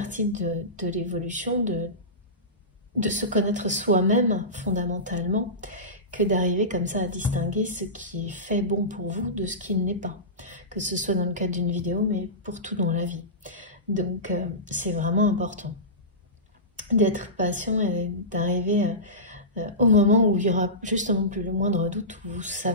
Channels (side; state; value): both; normal; correlation -0.20